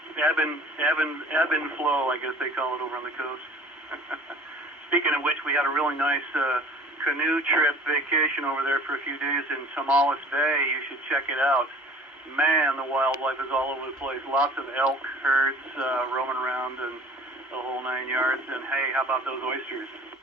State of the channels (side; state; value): both; normal; correlation 0.47